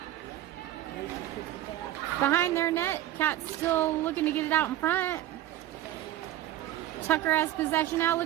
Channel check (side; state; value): left; quieter; 13.4 dB